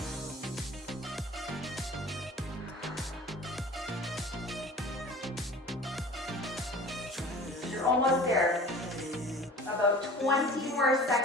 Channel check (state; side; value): normal; both; correlation 0.42